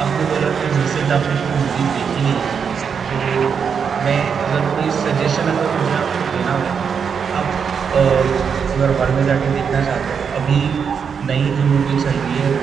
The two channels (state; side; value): quieter; left; 6.6 dB